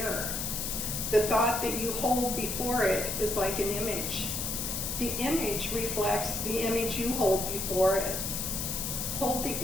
The thought that you hold before it is like an image. The image reflects the image you hold before it. Hold the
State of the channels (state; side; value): noise; left; hiss, 2 dB below the sound